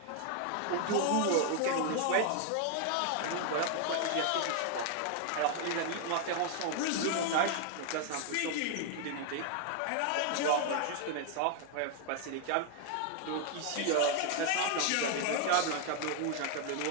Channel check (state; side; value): different; both; correlation 0.00